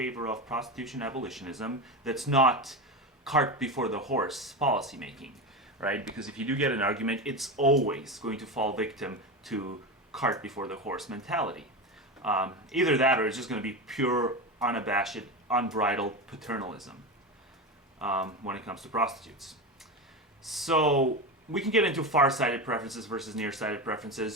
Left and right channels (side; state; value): both; normal; correlation 0.20